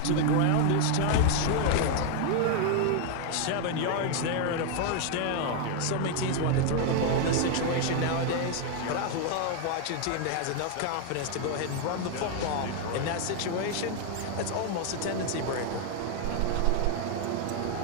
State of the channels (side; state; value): both; different; correlation 0.00